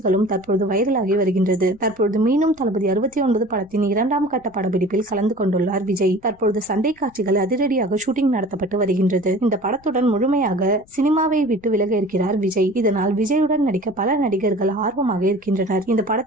தற்பொழுது வைரலாகி வருகின்றது. தற்பொழுது மீண்டும் தளபதி 69 படத்தின் 2ஆம் கட்ட படப்பிடிப்பில் கலந்து கொண்டுள்ளார் விஜய். தற்பொழுது சண்டை காட்சிகள் அதிரடியாக ஷூட்டிங் நடத்தப்பட்டு வருகின்றது. இந்த படத்துடன் முழுமையாக சினிமாவை விட்டு விலக இருக்கிறார் விஜய். இதனால் விஜயுடன் நடிக்க பல நடிகர்கள் ஆர்வமாக இருக்கின்றனர். இந்த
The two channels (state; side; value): noise; left; rumble, 29 dB below the sound